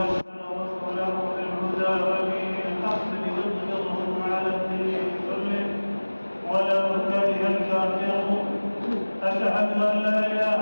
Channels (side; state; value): both; inverted; correlation -1.00